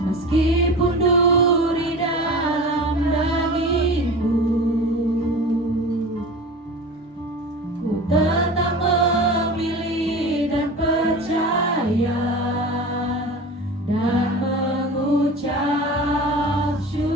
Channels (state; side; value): normal; both; correlation 0.34